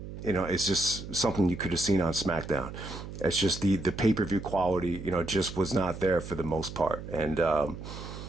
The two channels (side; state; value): right; noise; hum, 10 dB below the sound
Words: it's just something you could have seen on SmackDown. It's just the pay-per-view quality, just was not there for the most part. And